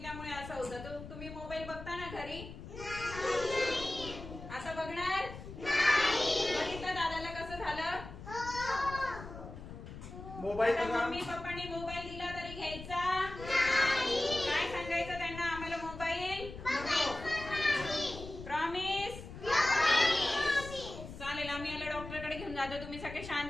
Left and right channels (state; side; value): noise; left; rumble, 12 dB below the sound